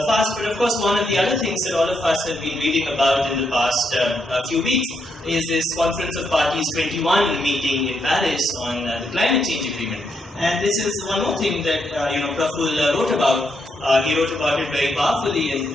fast. But of course, one of the other things that all of us have been reading about in the past few weeks is this Conference of Parties 21 meeting in Paris on the climate change agreement. And this is one more thing that Praful wrote about. He wrote about it very powerfully and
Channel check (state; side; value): normal; both; correlation 0.79